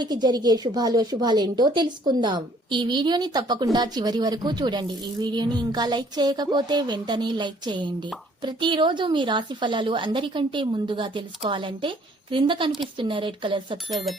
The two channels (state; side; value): normal; both; correlation 0.60